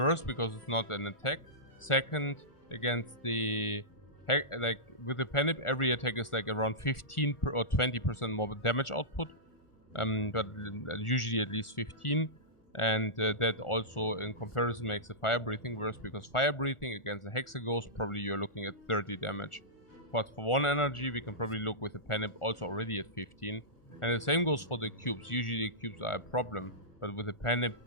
because it's not an attack. Second, against the like with the Penip, every attack is like around 15 or 20% more damage output, but usually at least 15. And that also in comparison makes the fire breathing worse, because fire breathing against the Hexaghost probably you're looking at 30 damage. But for one energy we can probably look with the Penip also already at 15. And the same goes for the cubes. Usually the cubes are a problem, but with the Penip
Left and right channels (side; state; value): right; late; 1.4 ms